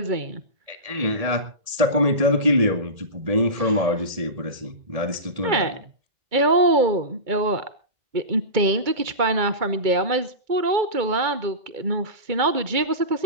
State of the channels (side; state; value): left; late; 1.8 ms